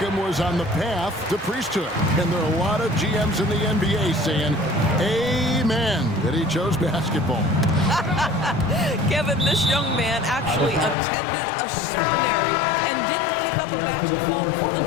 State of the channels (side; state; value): right; drops out; at 11.0 s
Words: was on the path to priesthood. And there are a lot of GMs in the NBA saying, amen, that he chose basketball. Kevin, this young man actually attended a seminary and didn't pick up a basketball